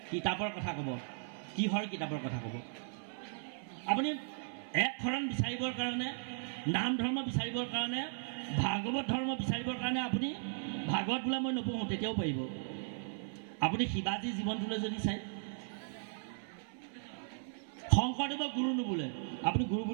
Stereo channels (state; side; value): silent; left; 53 dB below the other